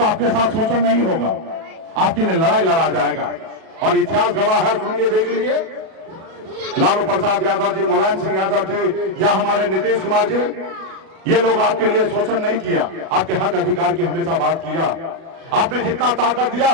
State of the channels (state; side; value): late; left; 37 ms